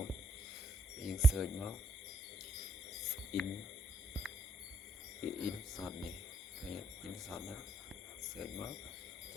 យើង search មក in shot នេះឃើញ in shot ហ្នឹង search មកអ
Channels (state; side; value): normal; both; correlation 0.74